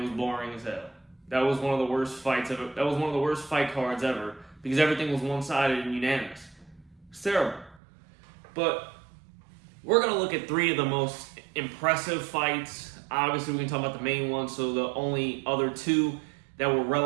boring as hell. That was one of the worst fights ever. That was one of the worst fight cards ever because everything was one-sided and unanimous. It's terrible. But we're going to look at 3 of the most impressive fights. Obviously, we can talk about the main one, so the only other 2 that were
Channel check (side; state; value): left; drops out; at 7.8 s